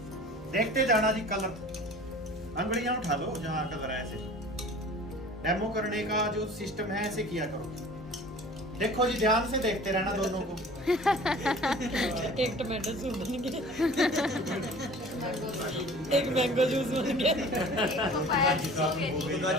देखते जाना जी कलर। अंगड़ियां उठा लो जहां कलर है। ऐसे डेमो करने का जो सिस्टम है ऐसे किया करो। देखो जी ध्यान से देखते रहना दोनों को। एक टमाटो सूप बन गया, एक मैंगो जूस बन गया,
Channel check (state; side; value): normal; both; correlation 0.44